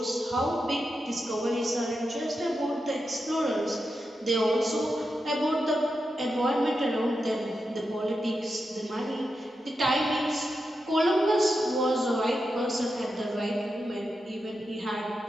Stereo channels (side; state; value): both; normal; correlation 0.88